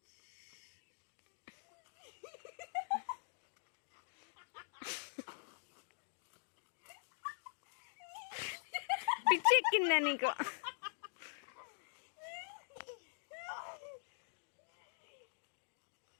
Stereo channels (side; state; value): right; silent; digital silence